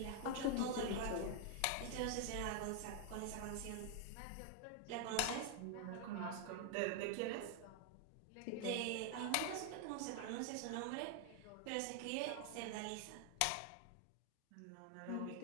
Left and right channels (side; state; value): both; different; correlation 0.00